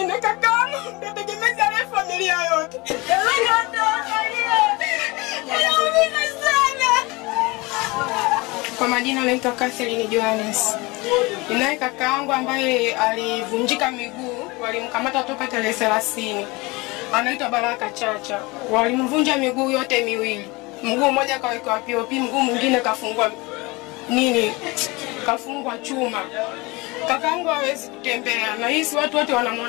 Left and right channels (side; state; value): right; quieter; 24.3 dB